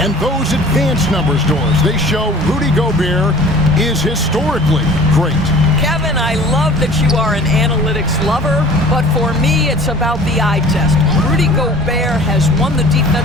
those advanced numbers, Doors, they show Rudy Gobert is historically great. Kevin, I love that you are an analytics lover, but for me, it's about the eye test. Rudy Gobert has won the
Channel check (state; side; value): normal; both; correlation 0.46